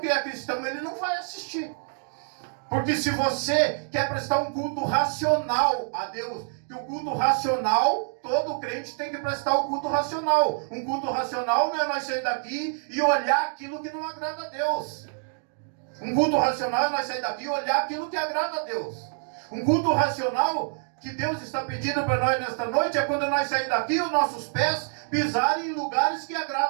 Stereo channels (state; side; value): silent; left; 59 dB below the other